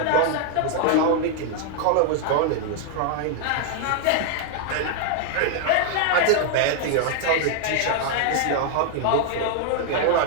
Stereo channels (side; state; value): both; different; correlation 0.00